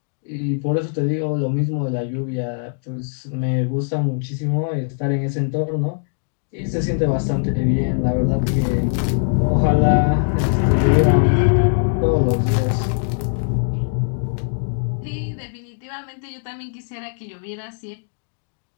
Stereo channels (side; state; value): right; silent; digital silence